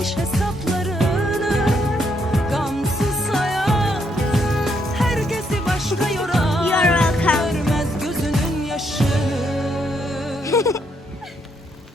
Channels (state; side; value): normal; both; correlation 0.75